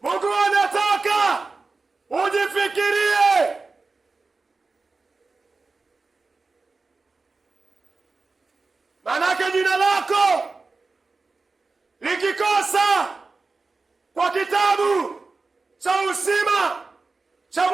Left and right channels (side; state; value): left; quieter; 3.9 dB